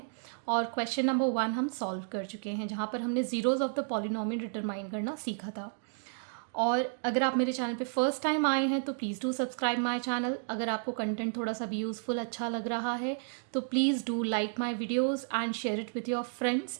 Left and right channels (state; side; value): silent; left; digital silence